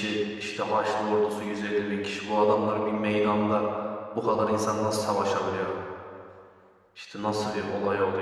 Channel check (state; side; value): identical; both; correlation 1.00